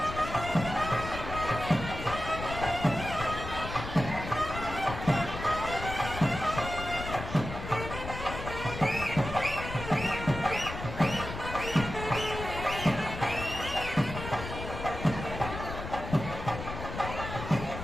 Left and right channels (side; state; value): left; noise; rumble, 8 dB below the sound